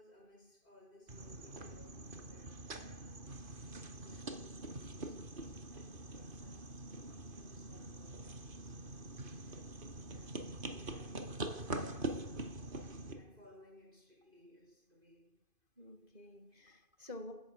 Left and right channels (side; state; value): left; late; 2.5 ms